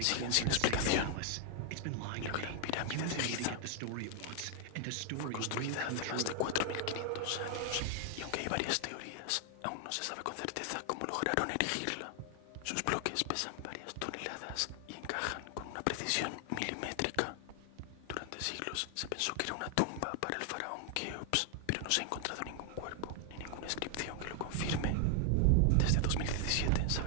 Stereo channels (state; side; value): different; both; correlation 0.00